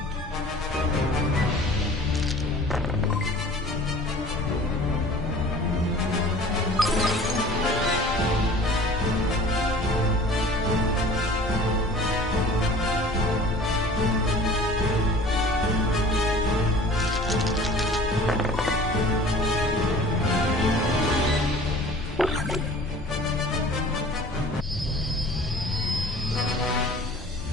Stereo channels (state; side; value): normal; both; correlation 0.46